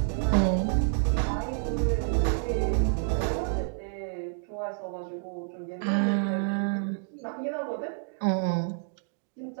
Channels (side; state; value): left; silent; digital silence